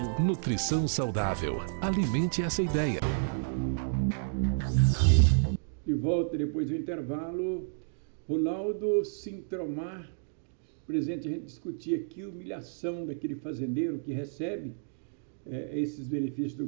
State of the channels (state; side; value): silent; left; digital silence